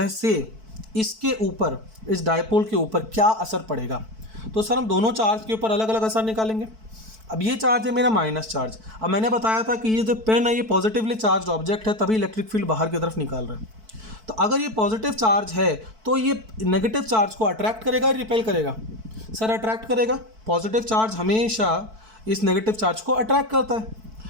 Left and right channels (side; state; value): left; late; 4.5 ms